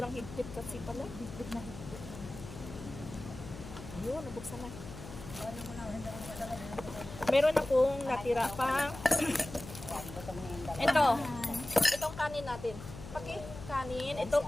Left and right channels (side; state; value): left; noise; hum, 12 dB below the sound